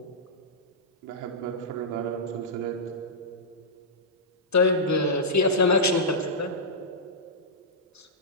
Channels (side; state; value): both; normal; correlation -0.14